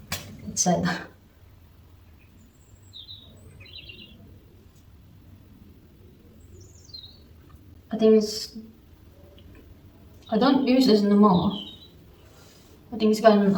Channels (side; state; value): both; identical; correlation 1.00